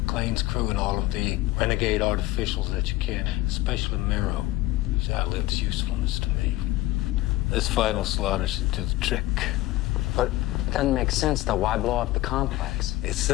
crew and all of the renegade artificials that you can, especially Miro. He's outlived his usefulness to me. This final slaughter should do the trick. But it doesn't make sense, though. Why blow up the complex? It's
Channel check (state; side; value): quieter; right; 17.3 dB